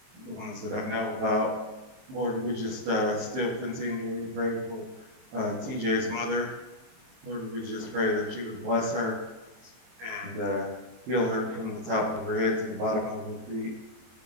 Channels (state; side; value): late; left; 23 ms